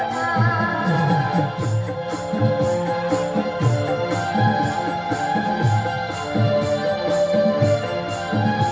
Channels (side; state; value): both; identical; correlation 1.00